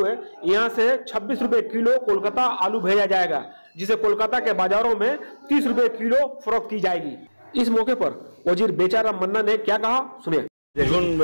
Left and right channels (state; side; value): inverted; both; correlation -1.00